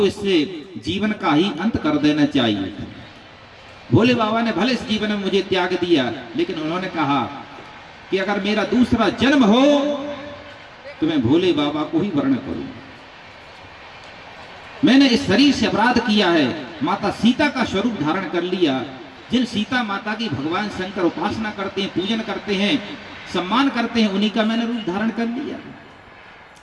इससे जीवन का ही अंत कर देना चाहिए। भोले बाबा ने भले इस जीवन में मुझे त्याग दिया, लेकिन उन्होंने कहा कि अगर मेरा दूसरा जन्म हो तो मैं भोले बाबा को ही वर्ण करूं। मैंने इस शरीर से अपराध किया है, माता सीता का स्वरूप धारण कर लिया। जिन सीता माता की भगवान शंकर उपासना करते हैं, पूजन करते हैं, सम्मान करते हैं, उन्हीं का मैंने रूप धारण कर लिया।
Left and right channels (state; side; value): identical; both; correlation 1.00